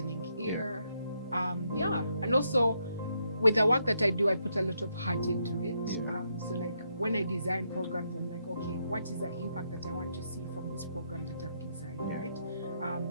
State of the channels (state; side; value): inverted; both; correlation -0.77